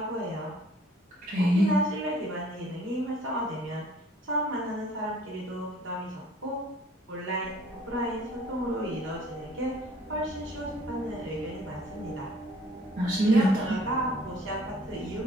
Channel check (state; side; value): normal; both; correlation 0.55